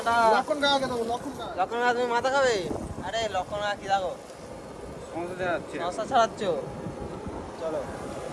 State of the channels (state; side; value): identical; both; correlation 1.00